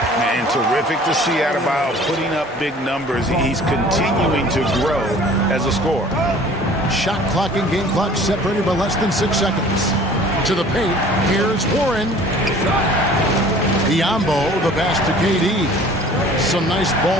And terrific to see Adebayo putting up big numbers. He's continuing to grow as a scorer. Shot clock and game clock separated by less than 6 seconds. To the paint. Here's Warren. Biyombo, the pass to KD. Some nice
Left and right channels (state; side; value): normal; both; correlation 0.49